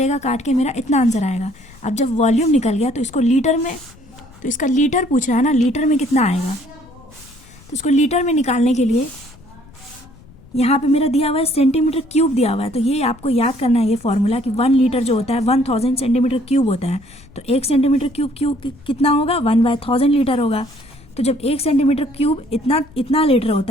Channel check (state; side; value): noise; left; rumble, 24 dB below the sound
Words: काट के मेरा इतना आंसर आएगा। अब जब वॉल्यूम निकल गया तो इसको लीटर में, तो इसका लीटर पूछ रहा है ना, लीटर में कितना आएगा, तो इसको लीटर में निकालने के लिए यहाँ पे मेरा दिया हुआ है सेंटीमीटर क्यूब दिया हुआ है। तो ये आपको याद करना है ये फॉर्मूला कि 1 लीटर जो होता है 1000 सेंटीमीटर क्यूब होता है। तो 1 सेंटीमीटर क्यूब कितना होगा 1/1000 लीटर होगा। तो जब 1 सेंटीमीटर क्यूब इतना लीटर